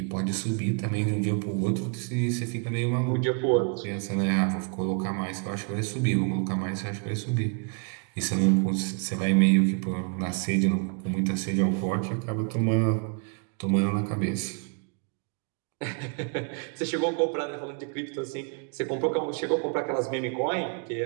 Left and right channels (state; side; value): quieter; left; 38.3 dB